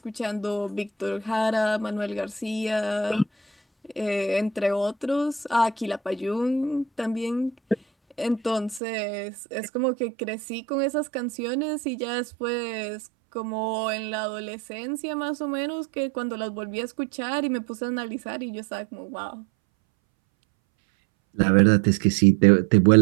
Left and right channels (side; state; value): left; drops out; at 8.8 s